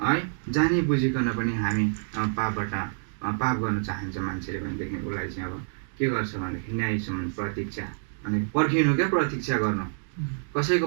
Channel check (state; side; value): silent; left; digital silence